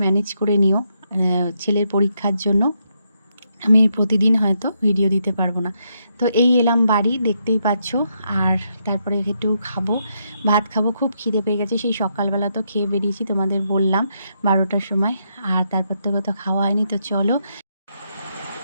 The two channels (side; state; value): both; inverted; correlation -0.79